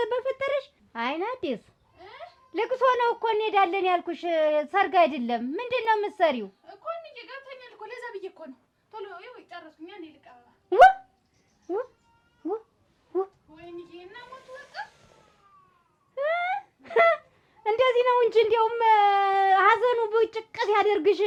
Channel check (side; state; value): both; identical; correlation 1.00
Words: በፈጠረሽ አይናዲስ ልቅሶ ነው እኮ እንሄዳለን ያልኩሽ፣ ሰርግ አይደለም። ምንድን ነው የምትሰሪው? እኮ እንዬ ገብተኛል እኮ ለዛ ብዬሽ እኮ ነው። ቶሎ ይኸው ጨረስኩኝ። እኔ ልቀባ ወይኔ እና ሞቱ በቃ እንደዚህ ነው እንጂ እንዲያውም ሀዘኑ ብጭቅት ያደርግሽ።